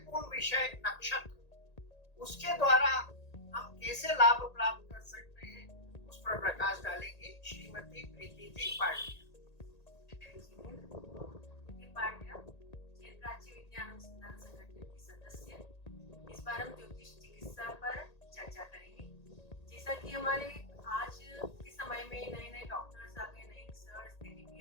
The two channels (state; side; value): late; right; 1.8 ms